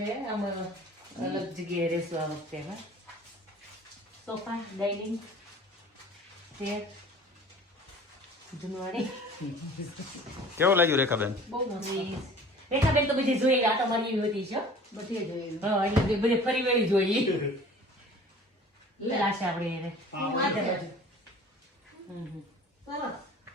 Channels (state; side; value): normal; both; correlation 0.46